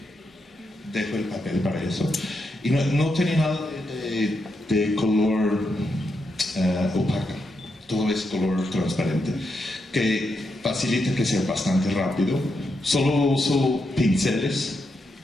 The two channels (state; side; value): normal; both; correlation 0.83